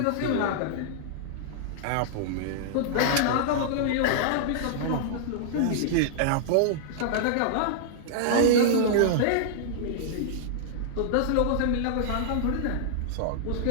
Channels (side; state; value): both; different; correlation -0.01